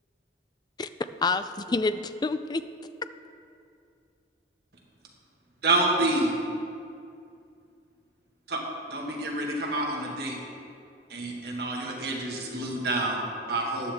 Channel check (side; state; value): both; normal; correlation 0.15